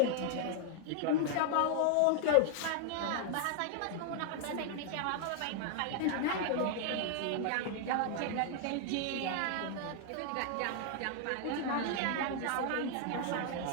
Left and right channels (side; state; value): both; different; correlation 0.00